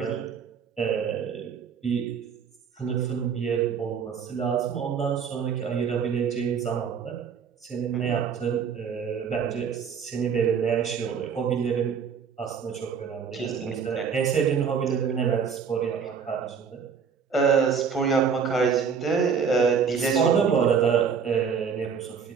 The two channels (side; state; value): left; quieter; 6.5 dB